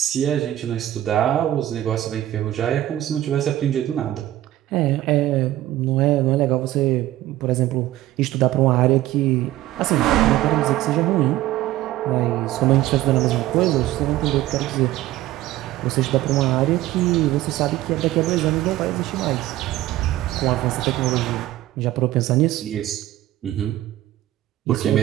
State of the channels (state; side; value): quieter; left; 14.8 dB